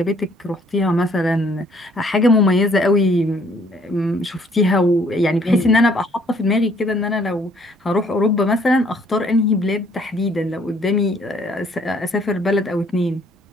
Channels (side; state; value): both; normal; correlation 0.62